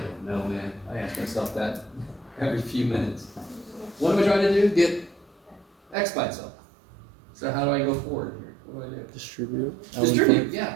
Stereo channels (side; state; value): left; drops out; at 6.0 s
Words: know, man. I ask myself that every few minutes. What am I trying to do? Get x by itself. So how do I go forward here? What do I do? Distribute. Distribute, yeah.